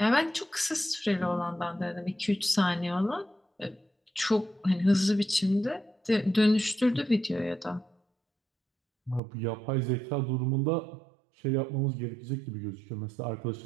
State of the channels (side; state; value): left; drops out; at 9.2 s